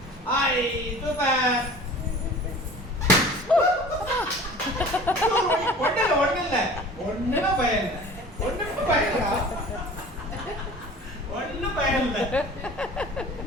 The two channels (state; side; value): normal; both; correlation 0.43